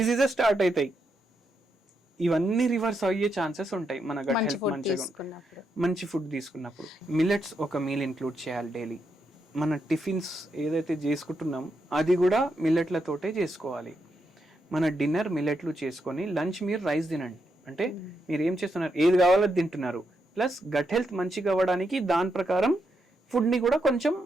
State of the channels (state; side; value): normal; both; correlation 0.82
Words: స్టార్ట్ అవుతాయి. ఇవన్నీ రివర్స్ అయ్యే ఛాన్సెస్ ఉంటాయి మన గట్ మంచి హెల్త్ ఫుడ్ మంచిగా తీసుకున్నప్పుడు. మంచి ఫుడ్ తీసుకున్నప్పుడు. మిల్లెట్స్ ఒక మీల్ ఇంక్లూడ్ చేయాలి డైలీ. మన టిఫిన్స్ ఏదైతే చేసుకుంటున్నాం అది కూడా మిల్లెట్లతోటే చేసుకోవాలి. మన డిన్నర్ మిల్లెట్లు చేసుకొని లంచ్ మీరు రైస్ తినండి. అంటే మీరు ఏం చేస్తున్నారు, ఏది కావాలో తింటున్నారు, ప్లస్ గట్ హెల్త్ మంచిగా అవ్వడానికి దాని ప్రకారం ఫుడ్ని కూడా కొంచెం